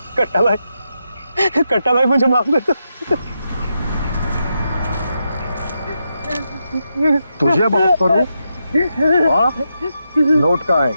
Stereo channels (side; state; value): both; inverted; correlation -0.85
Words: भाई मुझे माफ कर दो। तुझे माफ करूं? नोट कहाँ है?